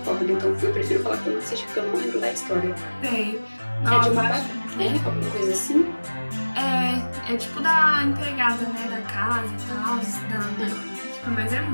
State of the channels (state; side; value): inverted; both; correlation -1.00